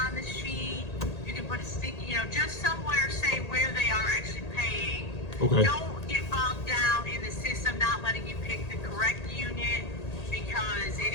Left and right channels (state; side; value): late; right; 1.8 ms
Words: on the sheet, you can put a sticky, just somewhere say where they are actually paying. Okay. Don't get bogged down in the system not letting you pick the correct unit because it